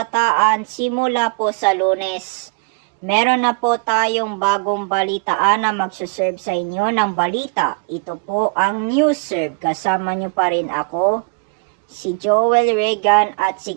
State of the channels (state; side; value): quieter; left; 31.1 dB